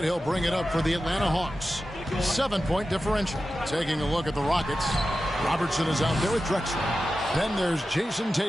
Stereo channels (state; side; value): normal; both; correlation 0.93